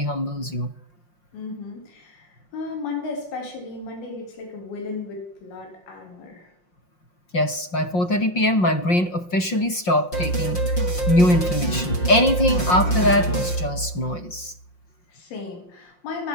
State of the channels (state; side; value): late; right; 5.6 ms